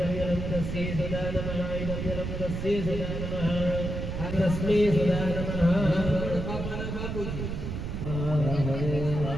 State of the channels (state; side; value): noise; right; rumble, 4 dB below the sound